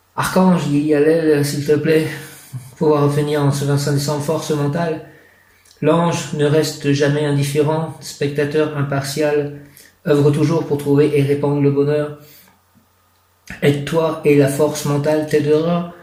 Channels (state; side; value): identical; both; correlation 1.00